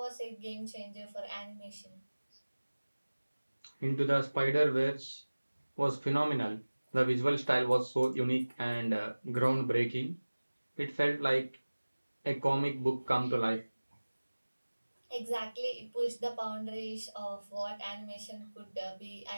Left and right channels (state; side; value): inverted; both; correlation -1.00